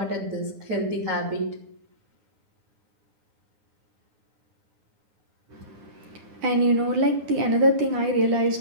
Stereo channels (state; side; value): late; left; 9.9 ms